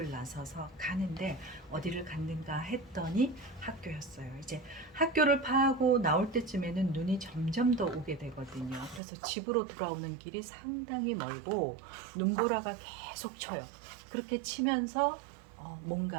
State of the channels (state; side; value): drops out; left; at 9.0 s